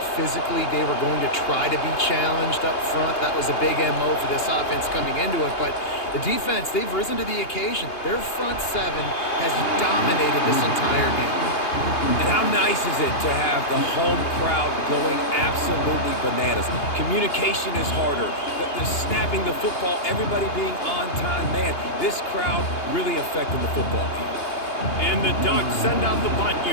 physically they were going to try to be challenged up front. That was a big MO for this offense coming into it. But the defense, they've risen to the occasion. Their front 7 has dominated this entire game. And how nice is it to have the home crowd going absolutely bananas? Communication is harder. The snapping the football, everybody being on time. Man, this crowd really affected the football game. And the Ducks send out the punt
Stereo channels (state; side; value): late; right; 2.8 ms